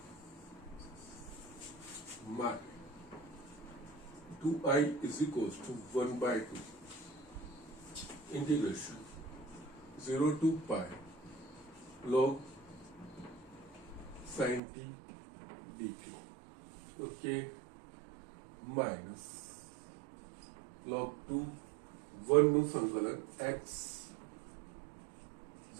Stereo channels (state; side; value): drops out; left; at 14.6 s